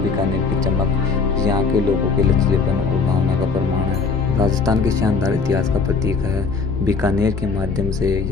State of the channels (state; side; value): quieter; right; 4.7 dB